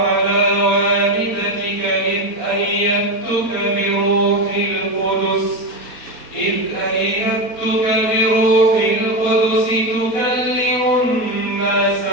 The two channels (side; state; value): right; late; 4.2 ms